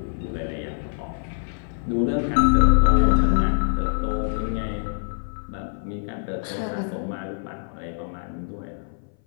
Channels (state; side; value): silent; right; 58 dB below the other